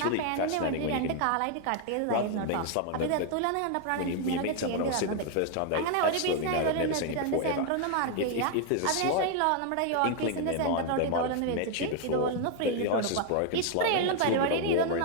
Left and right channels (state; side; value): different; both; correlation 0.00